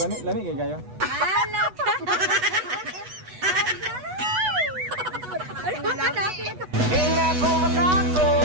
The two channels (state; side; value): late; left; 8.1 ms